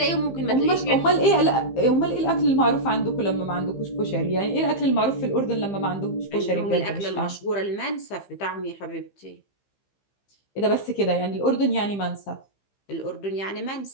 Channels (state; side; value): late; right; 15 ms